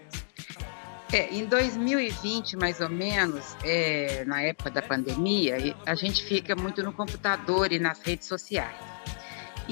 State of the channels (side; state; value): right; silent; digital silence